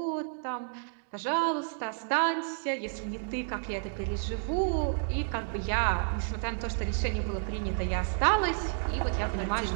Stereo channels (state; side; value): silent; left; digital silence